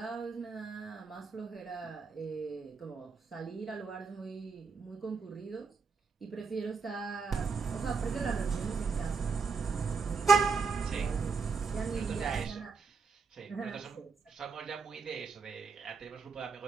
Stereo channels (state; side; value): quieter; left; 5.0 dB